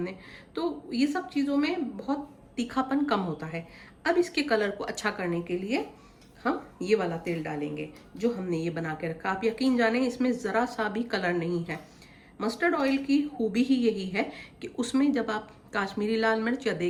तो ये सब चीज़ों में बहुत तीखापन कम होता है। अब इसके कलर को अच्छा करने के लिए हम ये वाला तेल डालेंगे जो हमने ये बना के रखा। आप यकीन जाने इसमें ज़रा सा भी कलर नहीं है। मस्टर्ड ऑयल की खूबी ही यही है कि उसमें जब आप काश्मीरी लाल मिर्च या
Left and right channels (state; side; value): identical; both; correlation 1.00